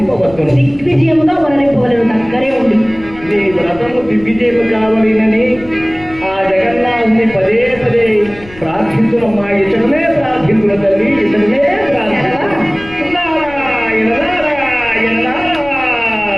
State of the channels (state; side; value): noise; left; rumble, 19 dB below the sound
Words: దిగ్విజయముగా వనరింపవలను దగ్గరే ఉంది. నీ వ్రతము దిగ్విజయము కావాలని